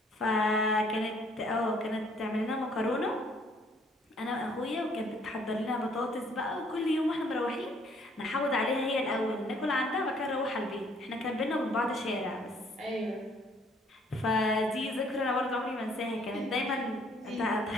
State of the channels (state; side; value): normal; both; correlation 0.62